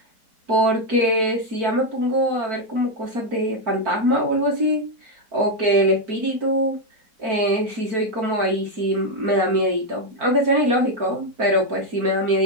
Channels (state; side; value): late; left; 4.5 ms